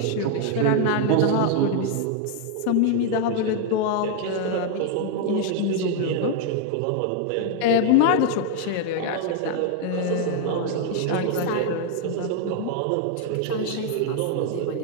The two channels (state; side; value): different; both; correlation 0.00